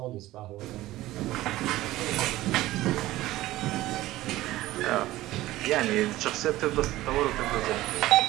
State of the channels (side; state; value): left; quieter; 16.5 dB